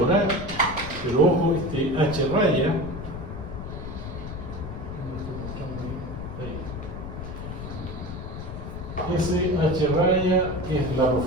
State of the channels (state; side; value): noise; left; rumble, 9 dB below the sound